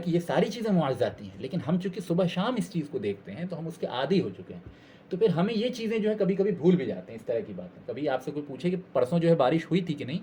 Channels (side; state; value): both; identical; correlation 1.00